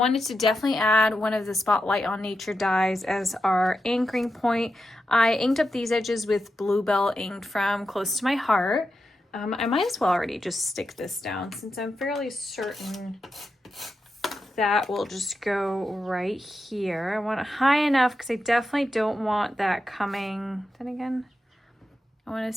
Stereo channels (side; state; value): both; normal; correlation 0.88